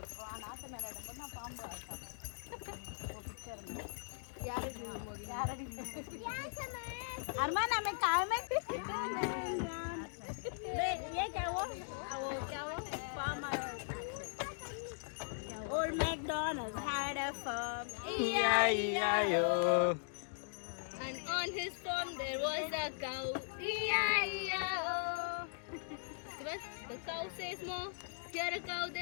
Arman hमें कार में ये क्या वो Old MacDonald had a farm, E-I-E-I-O, and on his farm there was a cow, E-I-E-I-O. The cow says more, here a cow,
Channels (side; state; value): right; silent; digital silence